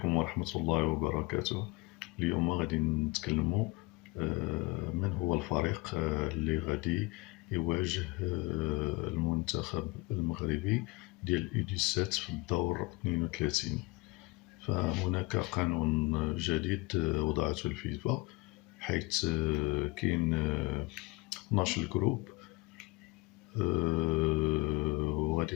ورحمة الله وبركاته. اليوم غادي نتكلموا من هو الفريق اللي غادي يواجه المنتخب المغربي ديال U17 في الدور 32. فهناك قانون جديد وضعته الفيفا، حيث كاين 12 جروب، وغادي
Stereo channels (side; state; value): right; quieter; 23.5 dB